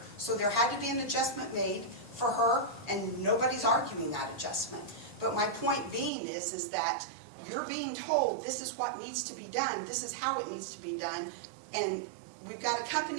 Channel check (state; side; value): drops out; left; at 6.1 s